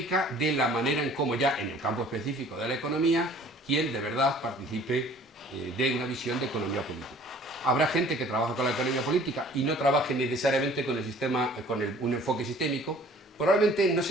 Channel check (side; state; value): both; normal; correlation 0.51